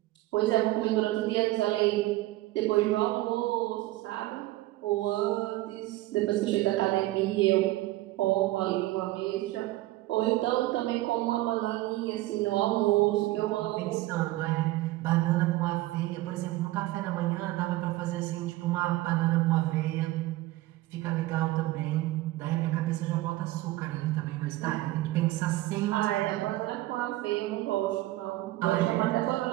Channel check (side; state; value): left; quieter; 17.5 dB